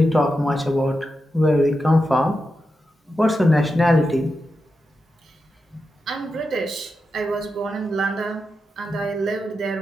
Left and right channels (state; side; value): normal; both; correlation 0.89